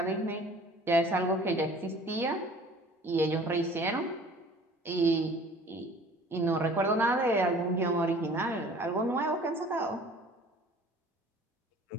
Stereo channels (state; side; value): normal; both; correlation 0.49